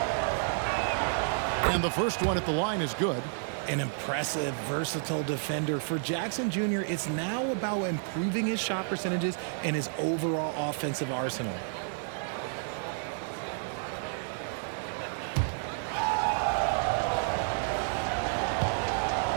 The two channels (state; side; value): silent; left; digital silence